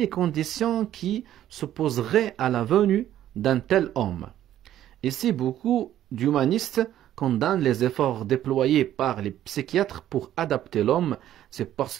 conditions qui s'opposeraient à la venue d'un tel homme. Et si beaucoup d'humanistes condamne les efforts déployés par les psychiatres pour adapter l'homme, c'est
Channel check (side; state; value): left; quieter; 12.1 dB